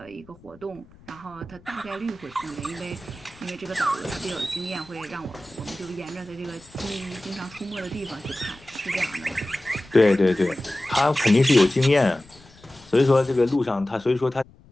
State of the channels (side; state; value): left; noise; rumble, 25 dB below the sound